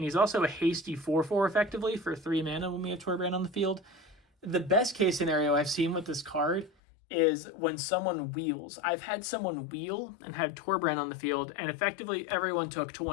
he's also a hasty 4/4 effectively for 3 mana when we have Torbran on the field. The best case scenario I've seen with this card is when someone wheels. I've had someone wheel and had Torbran on the field, and effectively everyone took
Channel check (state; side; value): drops out; right; at 6.7 s